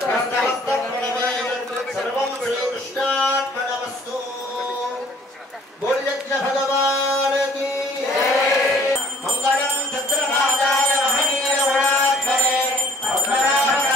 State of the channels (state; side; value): normal; both; correlation 0.57